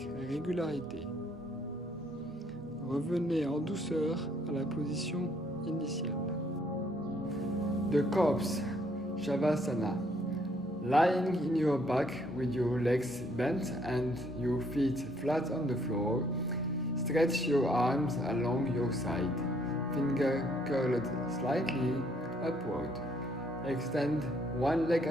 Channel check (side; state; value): both; normal; correlation 0.67